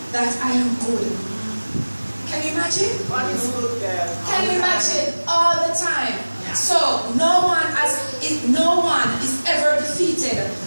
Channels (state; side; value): inverted; both; correlation -1.00